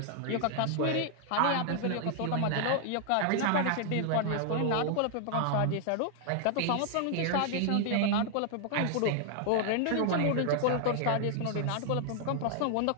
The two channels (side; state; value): both; different; correlation 0.00